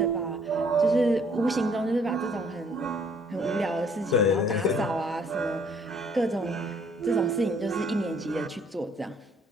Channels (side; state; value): both; normal; correlation 0.62